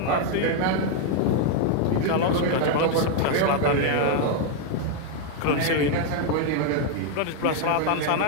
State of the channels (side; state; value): both; different; correlation 0.00